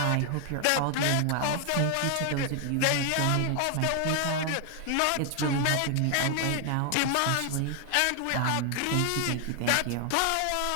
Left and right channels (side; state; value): both; different; correlation 0.00